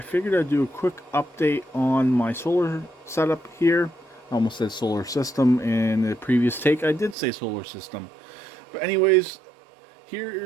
figured I'd do a quick update on my solar setup here. I almost said solar system in the previous take. I did say solar system. But anyways,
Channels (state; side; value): drops out; left; at 7.2 s